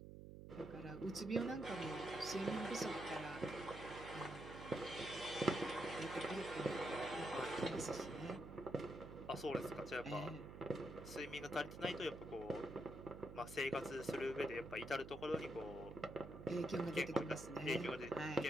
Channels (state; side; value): noise; right; hum, 11 dB below the sound